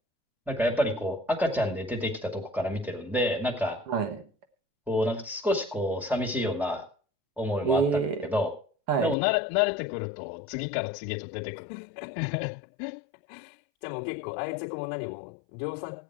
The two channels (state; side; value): drops out; right; at 9.2 s